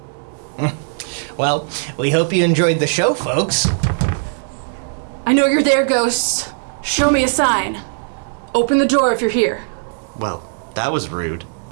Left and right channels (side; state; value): left; silent; digital silence